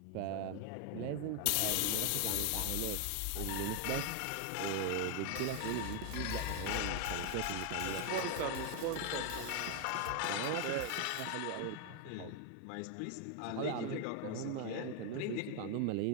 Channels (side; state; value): both; different; correlation 0.01